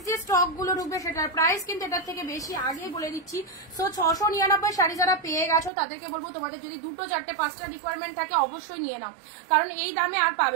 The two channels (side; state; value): left; drops out; at 5.7 s